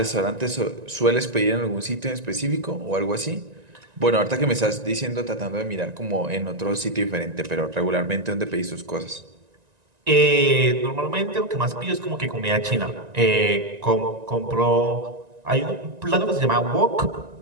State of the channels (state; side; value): late; left; 1.9 ms